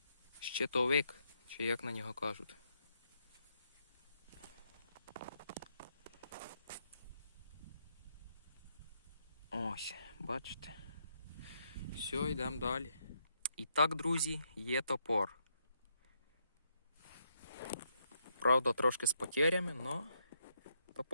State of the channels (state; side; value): inverted; both; correlation -0.77